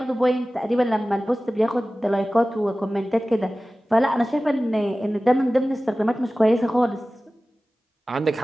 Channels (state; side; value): normal; both; correlation 0.96